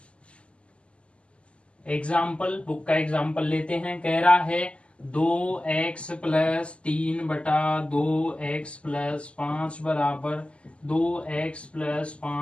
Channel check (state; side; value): late; right; 0.057 ms